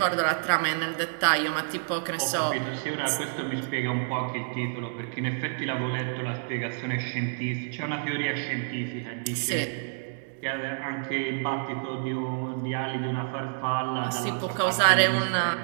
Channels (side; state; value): left; silent; digital silence